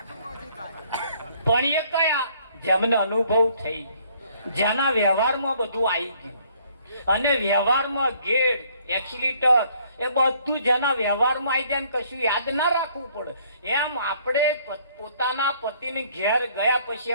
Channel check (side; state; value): both; inverted; correlation -0.62